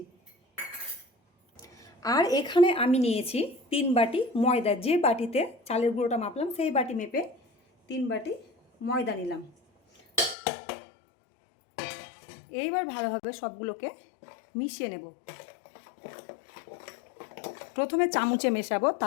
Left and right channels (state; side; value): drops out; right; at 10.4 s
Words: আর এখানে আমি নিয়েছি 3 বাটি ময়দা। যে বাটিতে চালের গুঁড়োটা মাপলাম সেই বাটি মেপে 3 বাটি ময়দা নিলাম। এইবার ভালোভাবে সবগুলোকে মিশিয়ে নেব। প্রথমে চামচে মেশাবো,